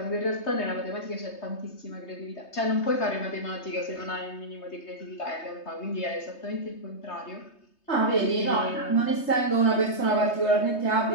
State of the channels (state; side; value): late; right; 3.2 ms